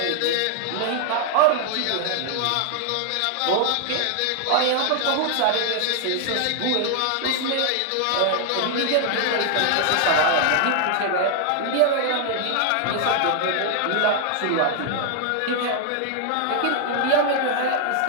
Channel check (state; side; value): different; both; correlation 0.00